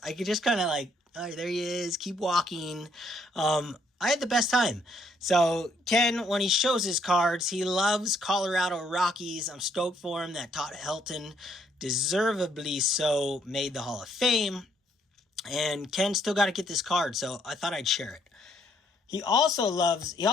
I could just kind of oh, there he is, keep walking. I had the best time. So Ken, when he shows his cards, he loves Colorado Rockies. I'm stoked for him that Todd Helton, deservedly so, made the Hall of Fame. And Ken still got to get this card, so I thought I'd share it. He also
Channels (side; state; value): both; normal; correlation 0.69